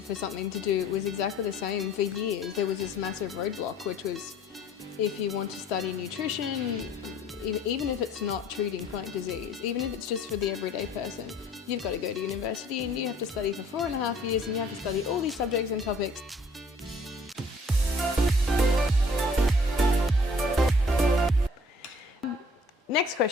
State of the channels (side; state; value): both; normal; correlation 0.55